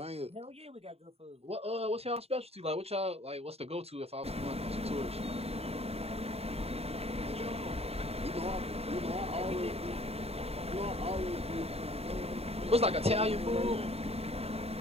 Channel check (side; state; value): left; late; 0.29 ms